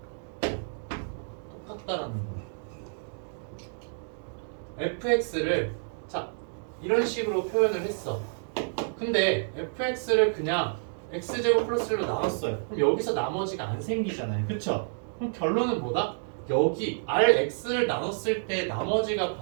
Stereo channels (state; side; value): silent; left; digital silence